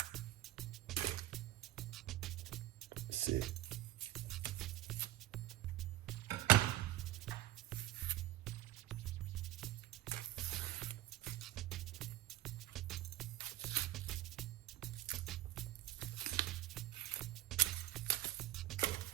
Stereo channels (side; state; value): left; quieter; 14.4 dB